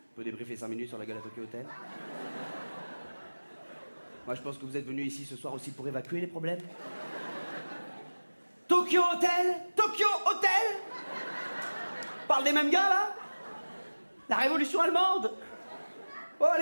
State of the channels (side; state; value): both; inverted; correlation -1.00